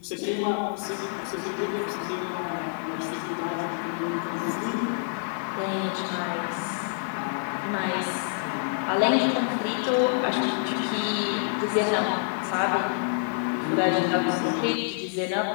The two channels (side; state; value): right; silent; 60 dB below the other